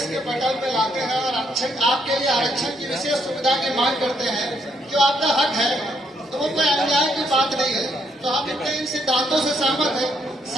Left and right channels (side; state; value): both; normal; correlation 0.73